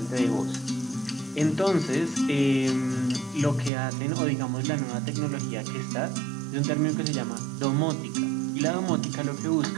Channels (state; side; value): drops out; left; at 3.7 s